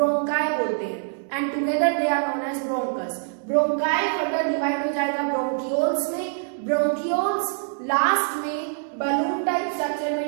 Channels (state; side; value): silent; left; 62 dB below the other